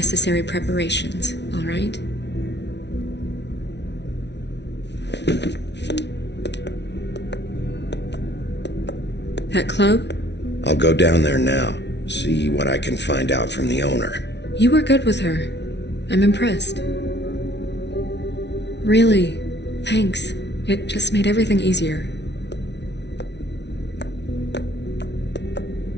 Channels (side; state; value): right; late; 0.50 ms